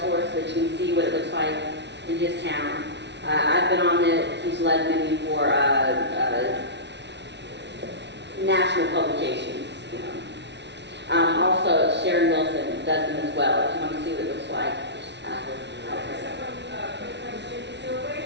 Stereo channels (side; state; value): left; late; 0.51 ms